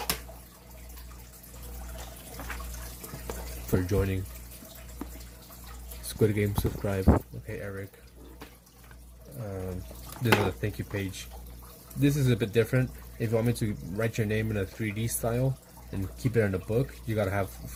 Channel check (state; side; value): identical; both; correlation 1.00